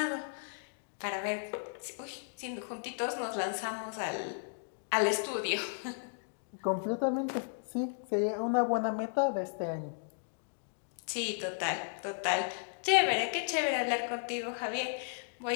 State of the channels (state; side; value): silent; right; digital silence